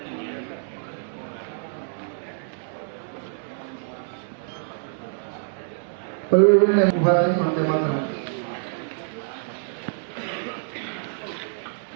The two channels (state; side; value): silent; left; digital silence